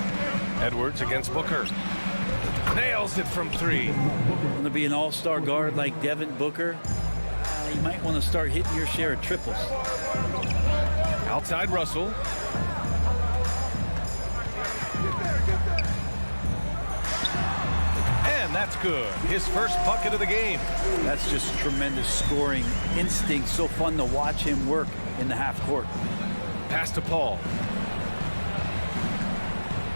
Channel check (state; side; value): inverted; both; correlation -1.00